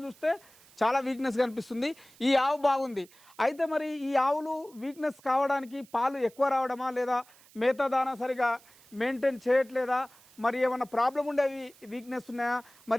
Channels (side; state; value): right; noise; hiss, 26 dB below the sound